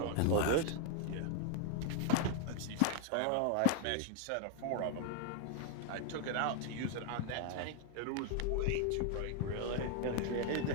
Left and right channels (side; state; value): both; different; correlation 0.00